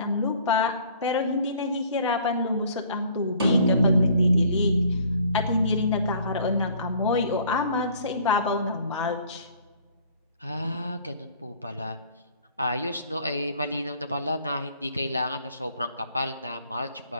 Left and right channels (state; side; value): inverted; both; correlation -0.55